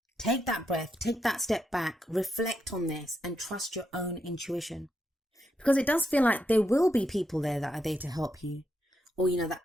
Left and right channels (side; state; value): both; normal; correlation 0.82